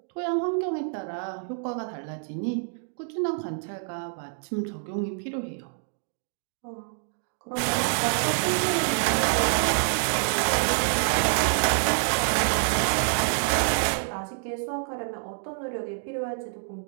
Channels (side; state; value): left; silent; digital silence